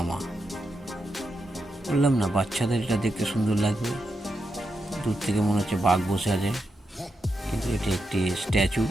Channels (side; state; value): both; normal; correlation 0.86